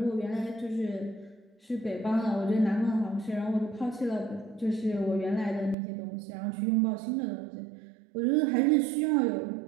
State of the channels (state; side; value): drops out; left; at 5.8 s